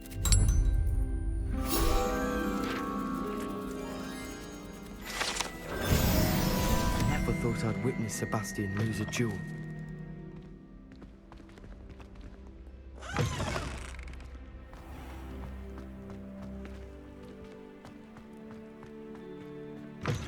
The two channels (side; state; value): both; identical; correlation 1.00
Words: Thought I'd witness Sebastian lose a duel.